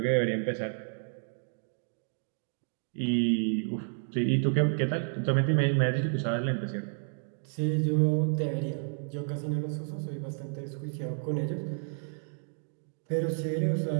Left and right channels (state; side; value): silent; left; 57 dB below the other